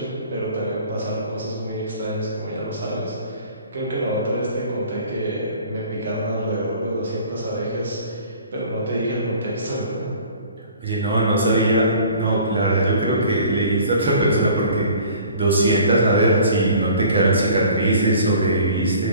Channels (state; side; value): inverted; both; correlation -0.49